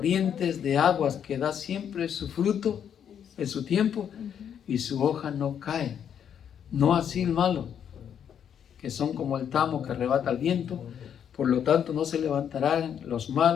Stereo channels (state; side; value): quieter; right; 8.6 dB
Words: de aguas, que da siempre su fruto en su tiempo, y su hoja no cae. No así el malo, que son como el tamo que arrebata el viento. Por lo tanto, no se levantarán los